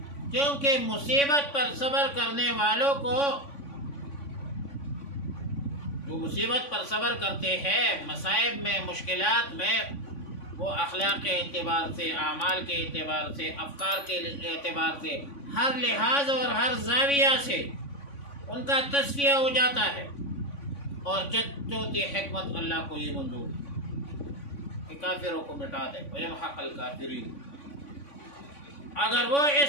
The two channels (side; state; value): right; late; 3.5 ms